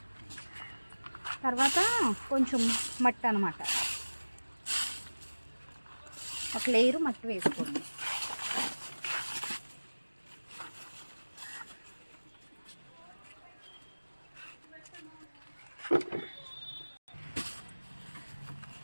తర్వాత కొంచెం మట్టి అన్నమాట, ఒక లేయరు మట్టి వేసుకోండి.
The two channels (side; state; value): both; inverted; correlation -1.00